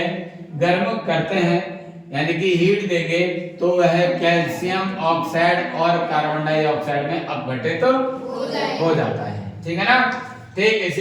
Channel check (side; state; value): both; identical; correlation 1.00